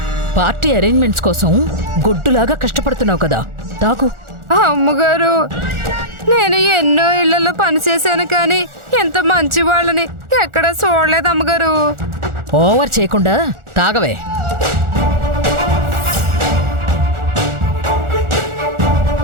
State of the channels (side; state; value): left; late; 1.4 ms